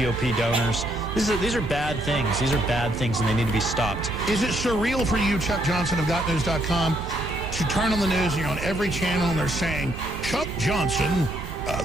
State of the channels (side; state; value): both; normal; correlation 0.72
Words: donors. These are bad things. These are bad things, and they need to be stopped. Is it surreal for you, Chuck Johnson of GotNews.com, to turn on the news and you're on every channel and they're saying, Chuck Johnson...